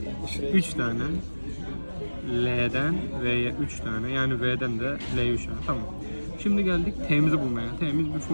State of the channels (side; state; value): both; inverted; correlation -1.00